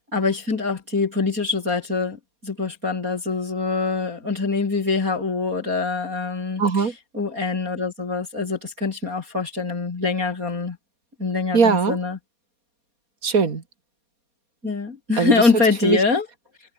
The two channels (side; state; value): left; late; 4.2 ms